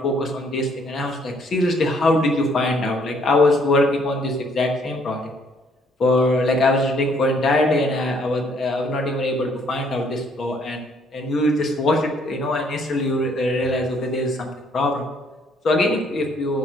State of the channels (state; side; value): normal; both; correlation 0.65